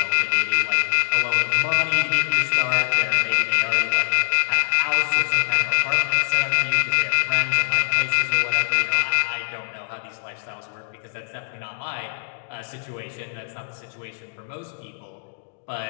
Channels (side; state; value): right; silent; digital silence